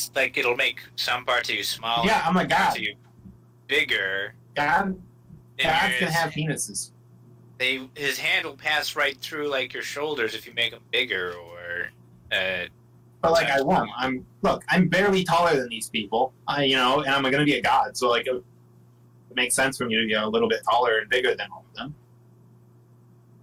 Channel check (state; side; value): identical; both; correlation 1.00